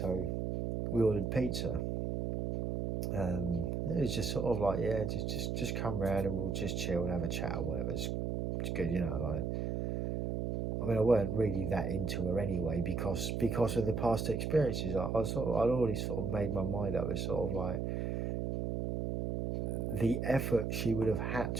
we ordered pizza. It was just sort of like, yeah, just come round and we'll just chill and have a chat or whatever. It's good, you know. Like, I mean, I weren't really that into her anyway because of the past experiences. I'd already sort of made my mind up. It's sort of like the effort she would have had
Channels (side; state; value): right; noise; hum, 1 dB below the sound